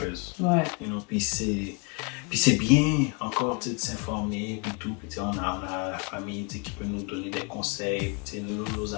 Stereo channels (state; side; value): quieter; right; 32.8 dB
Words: Ouais. You know, puis c'est bien encore de s'informer puis tout. Puis on a la famille qui peut nous donner des conseils, nos